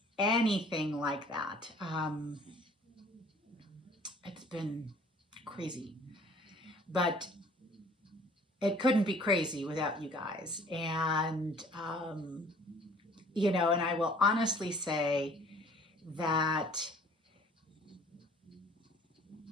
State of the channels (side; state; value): both; normal; correlation 0.53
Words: anything like that. It's been crazy, but it couldn't be crazy without you guys. And, and I will honestly say that